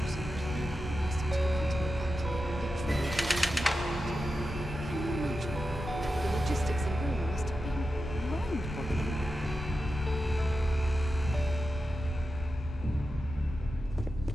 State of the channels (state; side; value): normal; both; correlation 0.91